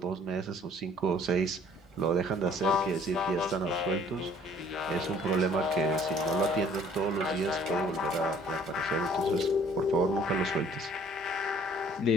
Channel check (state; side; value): normal; both; correlation 0.56